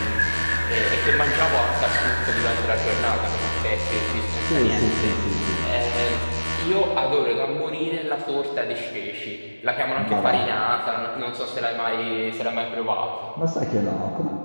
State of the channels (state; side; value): inverted; both; correlation -1.00